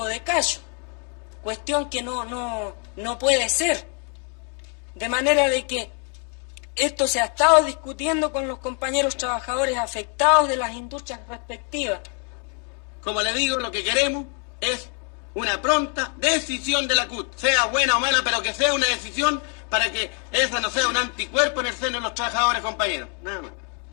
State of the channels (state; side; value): quieter; right; 39.5 dB